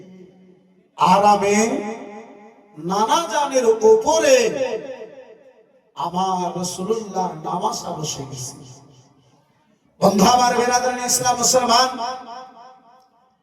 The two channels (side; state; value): both; identical; correlation 1.00